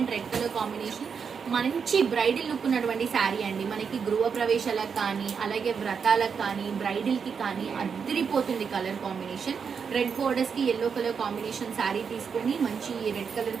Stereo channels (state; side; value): quieter; left; 6.3 dB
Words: red colour combination మంచి బ్రైడల్ లుక్ ఉన్నటువంటి శారీ అండి. మనకి గృహ ప్రవేశాలకు కానీ అలాగే వ్రతాలకు కానీ బ్రైడల్ కి కానీ అద్దరిపోతుంది కలర్ కాంబినేషన్. రెడ్ బోర్డర్స్ కి ఎల్లో కలర్ కాంబినేషన్ శారీ తీసుకొని మంచి రెడ్ కలర్